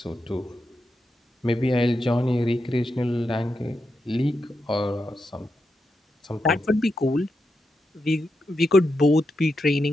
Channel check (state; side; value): normal; both; correlation 0.86